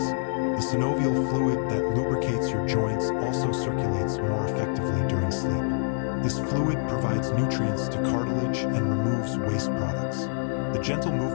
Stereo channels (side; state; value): right; silent; 56 dB below the other